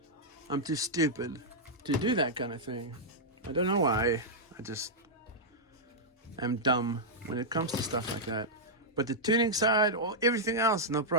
I'm too stupid to do that kind of thing. I don't know why. I just am dumb when it comes to stuff like that. But the tuning side or everything else, no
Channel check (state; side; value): normal; both; correlation -0.07